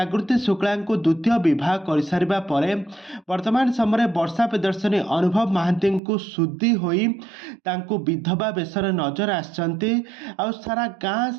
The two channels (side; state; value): left; drops out; at 6.0 s